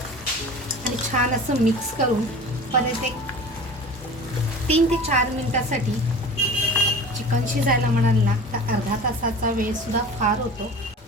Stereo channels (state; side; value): normal; both; correlation 0.39